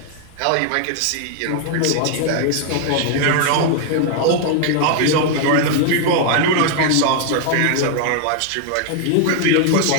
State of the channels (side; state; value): both; different; correlation 0.00